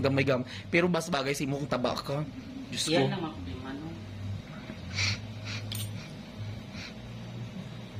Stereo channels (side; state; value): both; identical; correlation 1.00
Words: gam. Pero bas bagay sa imo kung taba ka. Diyos ko. Yan ang mga problema no.